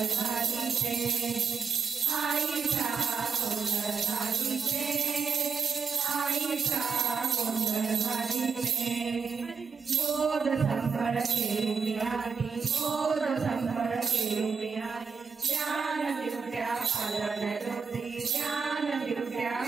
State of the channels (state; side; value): quieter; left; 5.7 dB